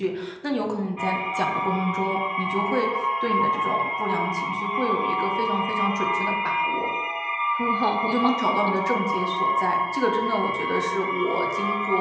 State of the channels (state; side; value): identical; both; correlation 1.00